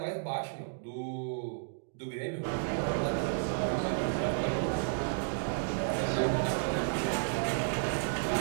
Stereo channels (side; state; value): left; silent; digital silence